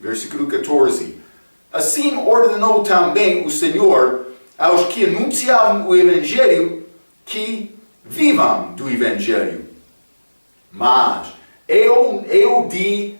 versículo 14. Assim ordenou também o Senhor aos que anunciavam o Evangelho que vivam do Evangelho. Mas eu de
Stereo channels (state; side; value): inverted; both; correlation -1.00